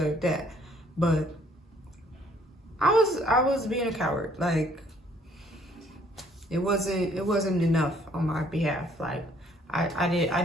that. But I was being a coward. Like, it wasn't enough on my behalf. Like, I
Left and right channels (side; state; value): both; normal; correlation 0.63